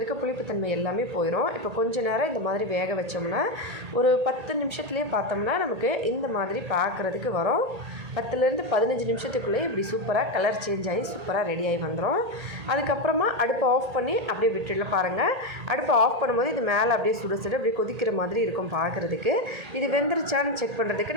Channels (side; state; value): left; late; 1.8 ms